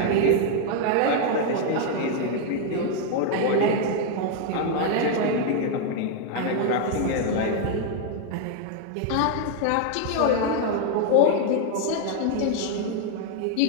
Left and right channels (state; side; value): different; both; correlation 0.00